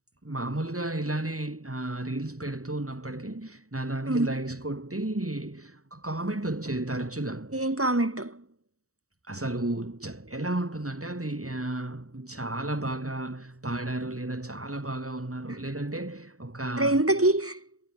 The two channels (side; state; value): left; late; 0.65 ms